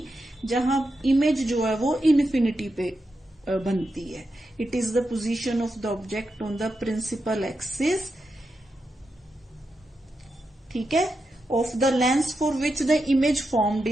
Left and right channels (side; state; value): both; normal; correlation 0.87